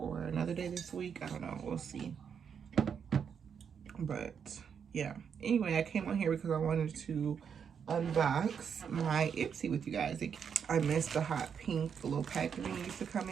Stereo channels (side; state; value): left; quieter; 7.2 dB